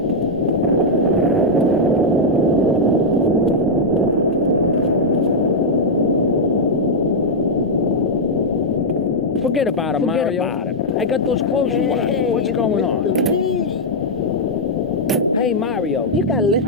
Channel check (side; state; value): both; normal; correlation -0.04